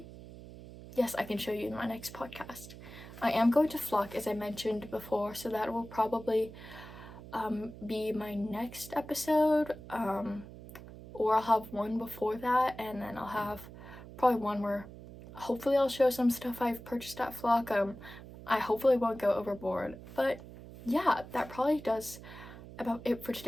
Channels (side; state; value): right; noise; hum, 15 dB below the sound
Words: yes, I can show you in my next podcast. I am going to flock, as I mentioned before, so that will probably be my next episode, or I'll have one before that, and then I'll have probably one where hopefully I'll show some stuff I've purchased at flock. I hopefully won't go overboard, but yeah, that probably does about it for